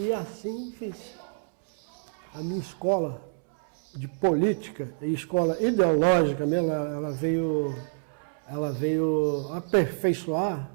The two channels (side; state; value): left; silent; 60 dB below the other